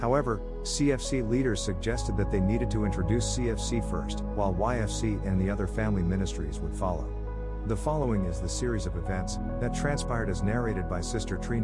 CFC leaders suggested that they needed to introduce CFC first, while YFC and the other family ministries would follow. The following is the series of events that transpired as narrated by Sister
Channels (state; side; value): identical; both; correlation 1.00